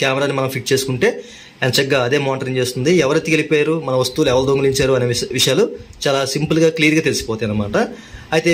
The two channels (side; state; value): both; identical; correlation 1.00